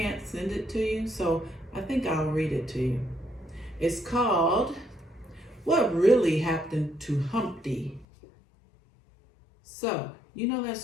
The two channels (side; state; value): right; drops out; at 8.1 s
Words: send it to you, so I think I'll read it to you. It's called What Really Happened to Humpty. So, you know that